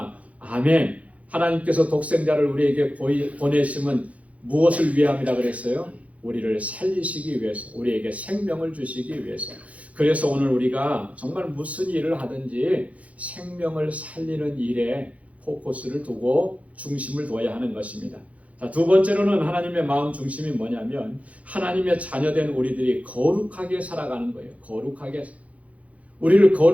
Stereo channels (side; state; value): left; late; 0.066 ms